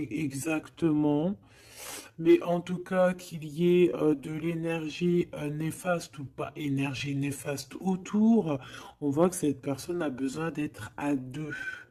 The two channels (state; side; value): identical; both; correlation 1.00